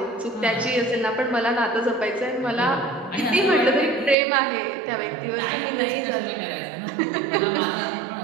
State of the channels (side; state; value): left; drops out; at 4.2 s